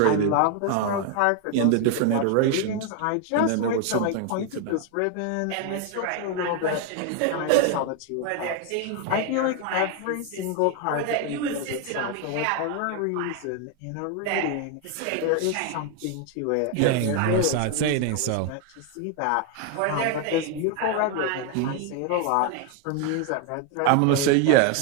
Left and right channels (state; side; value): different; both; correlation 0.01